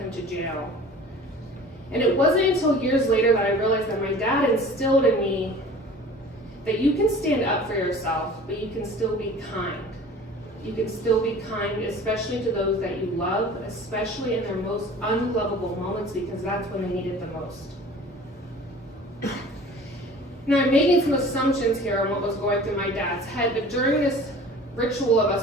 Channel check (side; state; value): both; normal; correlation 0.44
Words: to jail. And it wasn't until years later that I realized that my dad instilled in me that you can stand up for yourself, but you can still be kind. You can still be kind, especially to those that you love, especially in their most unlovable moments, because that's when they need it the most. Now, I'm making some assumptions here on what was going through my dad's head, but during this ritual of